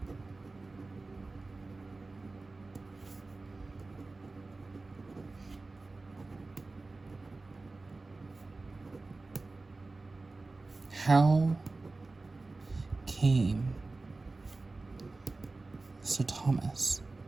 How came Sir Thomas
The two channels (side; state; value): left; quieter; 3.4 dB